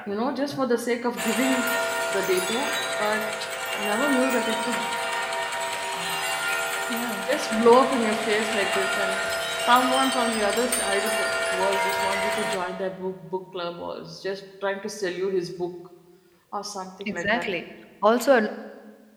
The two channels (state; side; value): identical; both; correlation 1.00